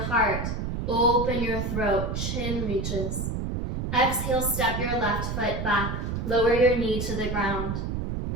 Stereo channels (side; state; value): right; noise; rumble, 2 dB below the sound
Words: heart, open your throat, chin reaches. Exhale, step your left foot back, lower your knee to the ground,